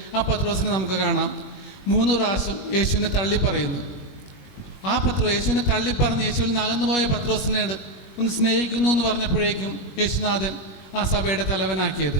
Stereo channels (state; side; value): late; right; 21 ms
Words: ആ പത്രോസിനെ നമുക്ക് കാണാം 3 പ്രാവശ്യം യേശുവിനെ തള്ളിപ്പറയുന്നു. ആ യേശുവിനെ തള്ളിപ്പറഞ്ഞ് യേശുവിൽ നിന്ന് അകന്നുപോയ പത്രോസിനോട് ഒന്ന് സ്നേഹിക്കുന്നു എന്ന് പറഞ്ഞപ്പോഴേക്കും യേശുനാഥൻ ആ സഭയുടെ തലവനാക്കിയത്.